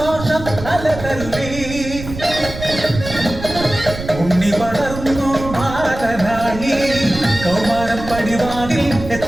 അലതല്ലി ഉണ്ണി വളർന്നു ബാലനായി കൗമാരം പടിവാതിൽ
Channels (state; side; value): noise; right; rumble, 10 dB below the sound